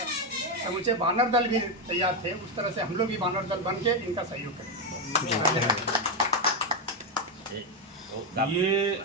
समूचे बानर दल भी तैयार थे। उस तरह से हम लोग भी बानर दल बन के इनका सहयोग करें।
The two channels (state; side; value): normal; both; correlation 0.05